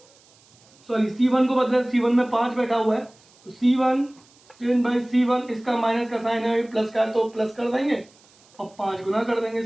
को बदले, C1 में 5 बैठा हुआ है तो C1 10 बाई C1, इसका माइनस का साइन है, प्लस का, तो प्लस कर देंगे और 5 गुना कर देंगे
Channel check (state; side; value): noise; right; hiss, 29 dB below the sound